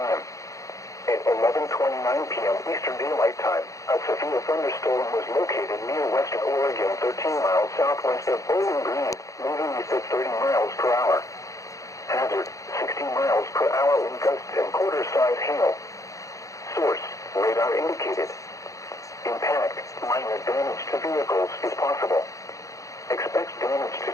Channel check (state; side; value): late; right; 0.16 ms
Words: At 11:29 p.m. Eastern Daylight Time, a severe thunderstorm was located near Weston, Oregon, 13 miles southwest of Bowling Green, moving east at 30 miles per hour. Hazard, 60 miles per hour in gusts and quarter-size hail. Source, radar indicated. Impact, minor damage to vehicles is possible. Expect damage to